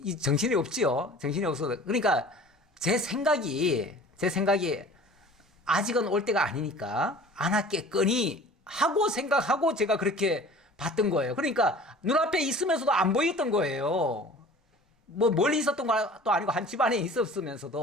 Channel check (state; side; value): normal; both; correlation 0.44